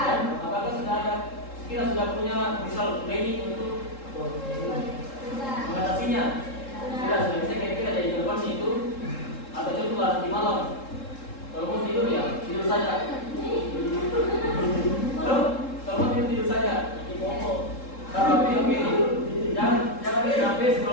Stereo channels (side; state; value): right; late; 3.7 ms